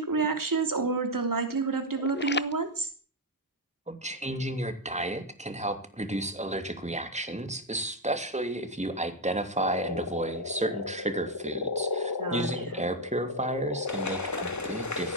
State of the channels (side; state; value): both; normal; correlation 0.04